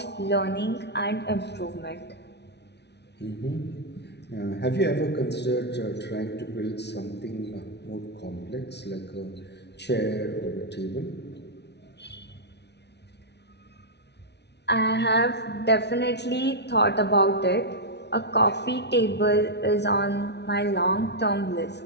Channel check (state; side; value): late; right; 0.50 ms